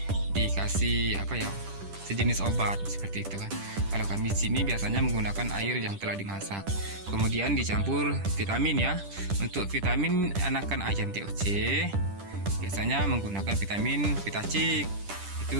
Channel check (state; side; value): late; left; 10 ms